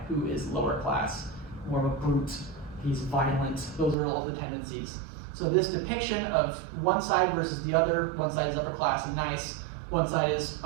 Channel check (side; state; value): left; drops out; at 4.0 s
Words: who is lower class, more of a brute, he's violent, those are all the tendencies. So this depiction of one side versus the other, one side is upper class and nice, one side is